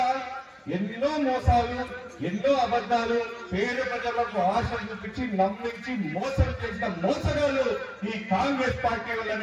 ఎన్నో మోసాలు, ఎన్నో అబద్ధాలు, పేద ప్రజలకు ఆశ చూపించి నమ్మించి మోసం చేసిన మోసగాళ్ళు ఈ కాంగ్రెస్ పార్టీ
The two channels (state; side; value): identical; both; correlation 1.00